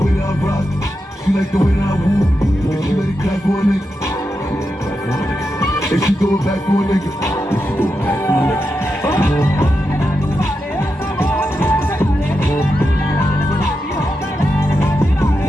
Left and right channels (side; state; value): both; normal; correlation 0.87